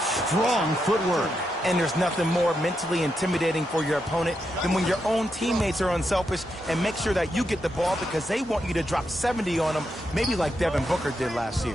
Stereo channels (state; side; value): normal; both; correlation 0.84